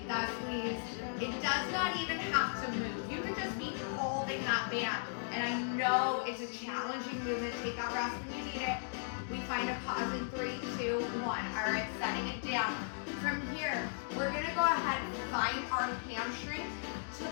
that squeeze. It does not even have to move. You could just be holding that band. And I know it's a challenging movement. Take that rest when you need it. We find a pause in 3, 2, 1. All right, setting it down. From here, we're gonna go ahead and find our hamstring to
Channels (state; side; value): silent; right; digital silence